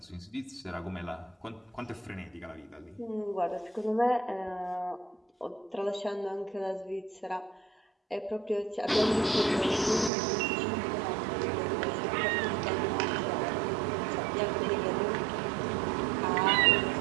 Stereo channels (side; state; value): left; drops out; at 10.1 s